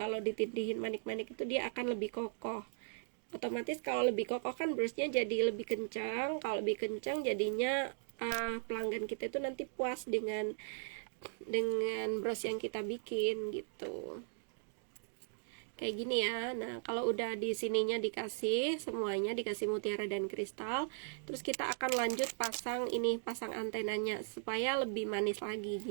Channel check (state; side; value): silent; left; digital silence